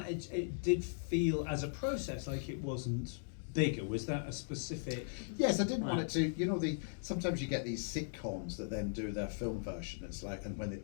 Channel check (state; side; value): silent; right; digital silence